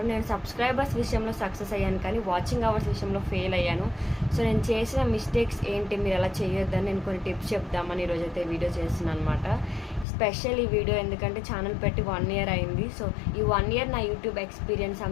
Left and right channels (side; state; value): right; drops out; at 10.1 s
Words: నేను సబ్స్క్రైబర్స్ విషయంలో సక్సెస్ అయ్యాను, కానీ వాచింగ్ అవర్స్ విషయంలో ఫెయిల్ అయ్యాను. సో నేను చేసిన మిస్టేక్స్ ఏంటి, మీరు అలా చేయొద్దని నేను కొన్ని టిప్స్ చెప్దామని ఈరోజైతే వీడియో చేస్తున్నాను అనమాట. స్పెషల్ ఈ వీడియో ఎందుకంటే ఛానల్ పెట్టి 1 ఇయర్ అయింది. సో ఈ 1 ఇయర్ నా యూట్యూబ్ ఎక్స్పీరియన్స్